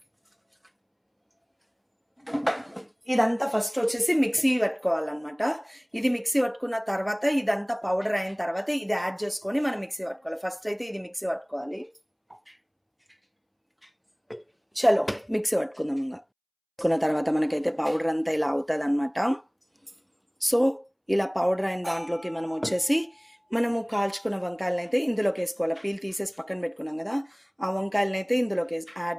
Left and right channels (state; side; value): identical; both; correlation 1.00